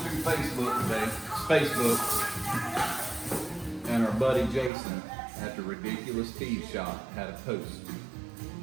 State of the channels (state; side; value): drops out; left; at 4.7 s